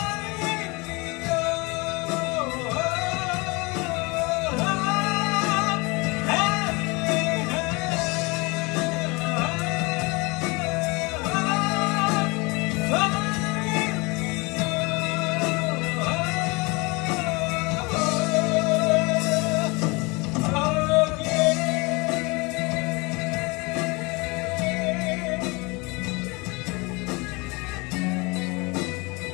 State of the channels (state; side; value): quieter; right; 26.7 dB